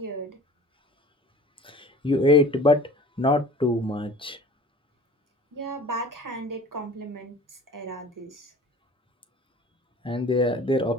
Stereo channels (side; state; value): both; normal; correlation 0.43